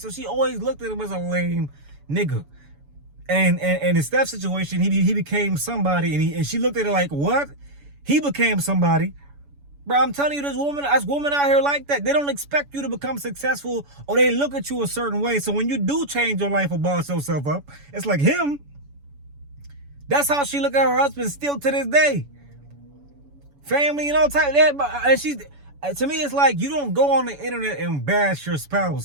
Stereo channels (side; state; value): left; late; 7.0 ms